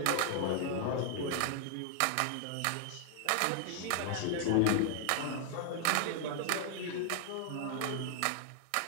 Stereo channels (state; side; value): different; both; correlation 0.00